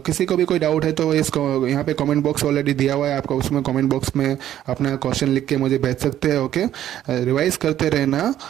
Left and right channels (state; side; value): quieter; left; 11.7 dB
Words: को भी कोई डाउट है तो इसको यहाँ पे कमेंट बॉक्स ऑलरेडी दिया हुआ है, आपको उसमें कमेंट बॉक्स में अपना क्वेश्चन लिख के मुझे भेज सकते हैं। ओके, रिवाइज करते रहना।